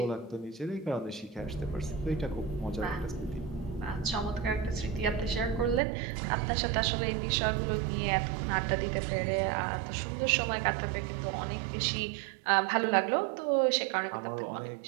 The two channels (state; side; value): drops out; left; at 5.8 s